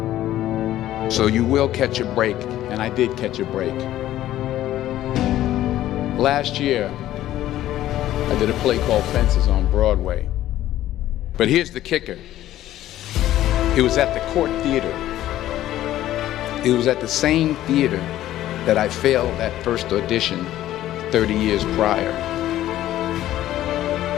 So you will catch a break, and I did catch a break. Last year, I did a play called Fences on Broadway. But here's the kicker. It was at the Court Theater. It was at the same theater that I failed that first audition 30 years prior.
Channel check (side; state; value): right; quieter; 13.5 dB